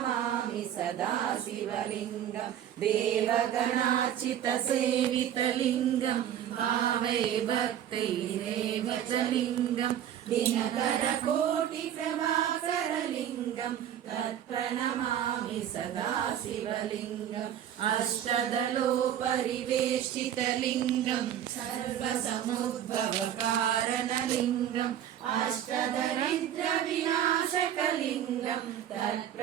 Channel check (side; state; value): left; quieter; 10.5 dB